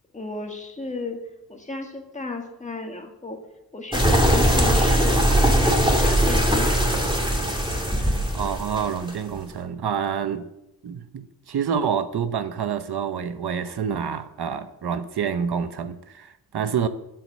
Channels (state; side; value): normal; both; correlation 0.54